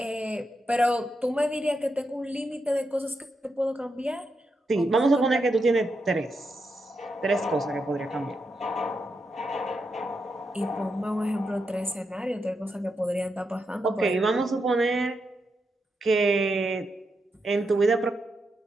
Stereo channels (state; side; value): normal; both; correlation 0.84